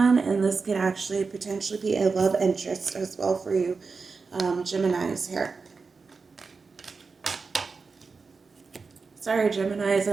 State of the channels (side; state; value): left; quieter; 4.6 dB